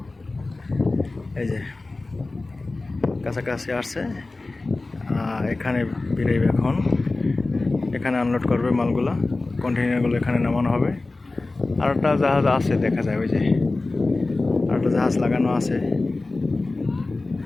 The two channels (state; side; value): quieter; right; 3.3 dB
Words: এই যে কাছাকাছি আসছে, এখানে বেরোবে এখন। এখানে আনলোড করবে মালগুলো, কন্টেইনারগুলো এখানে নামানো হবে। আর একটা জাহাজ আছে দেখা যায়, ওই যে আর একটা জাহাজ লাগানো আছে,